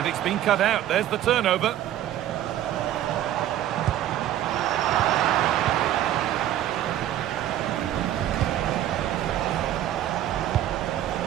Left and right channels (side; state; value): left; quieter; 12.3 dB